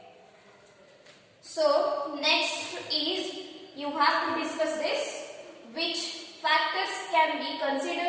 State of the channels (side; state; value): both; identical; correlation 1.00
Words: So next is you have to discuss this, which factors can be